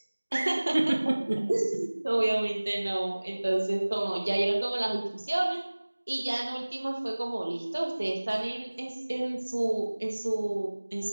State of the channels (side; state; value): both; inverted; correlation -1.00